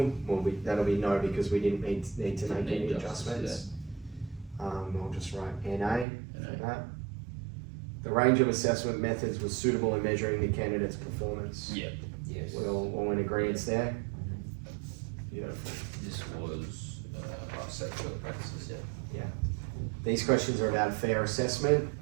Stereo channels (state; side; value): drops out; left; at 6.1 s